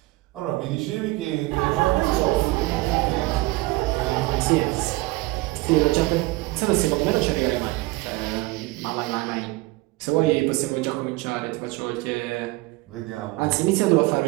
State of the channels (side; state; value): left; quieter; 21.5 dB